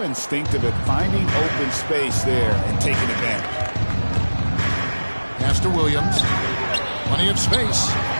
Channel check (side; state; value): both; inverted; correlation -1.00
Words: instinctive at finding open space there and taking advantage. Pass to Williams. Plenty of space.